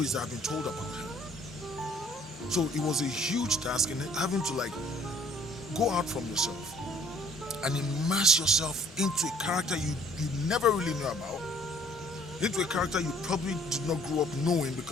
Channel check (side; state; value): both; normal; correlation 0.58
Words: that have been told about him. So it was a huge task in having to go out from yourself and immerse yourself into a character you never really knew about, into a character you probably did not grow up knowing,